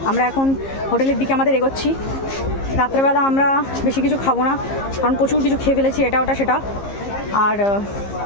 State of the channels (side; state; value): right; late; 15 ms